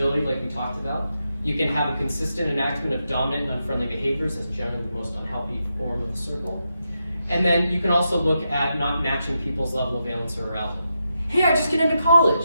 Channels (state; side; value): inverted; both; correlation -0.86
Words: like we talked about. You can have a consistent enactment of dominant and unfriendly behaviors as generally the most unhealthy form of the circle. And then you can also look at not matching people's level of valence or arousal. Hey, I just get into